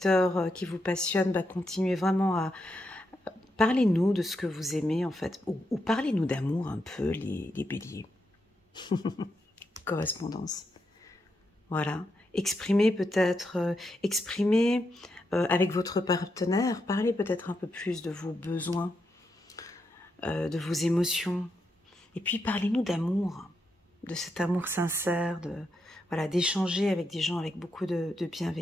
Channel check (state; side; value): normal; both; correlation 0.83